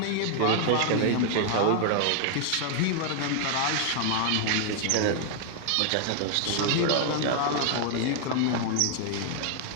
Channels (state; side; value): different; both; correlation 0.00